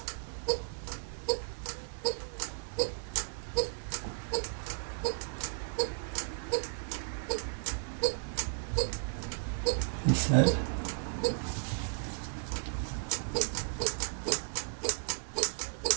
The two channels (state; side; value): silent; left; 55 dB below the other